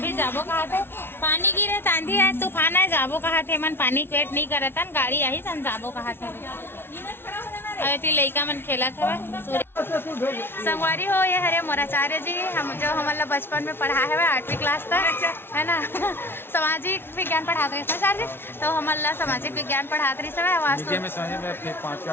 जाबो कहा थे पानी गिरे आंधी है तूफान है जाबो कहा थे मन पानी वेट नहीं करत हन गाड़ी आई सन जाबो कहा थे अरे लइका मन खेलत हवे संगवारी हो ये हरे मोराचार्य जी हम जो हमला बचपन में पढ़ा है 8वीं क्लास तक है ना सामाजिक विज्ञान पढ़ाते रहे सर जी तो हमला सामाजिक विज्ञान पढ़ाते रही समय वास्तु में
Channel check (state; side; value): late; right; 0.11 ms